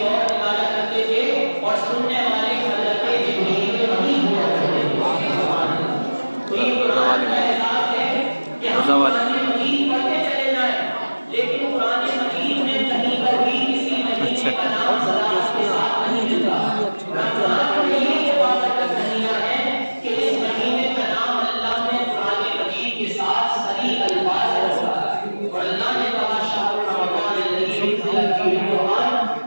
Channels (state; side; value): inverted; both; correlation -1.00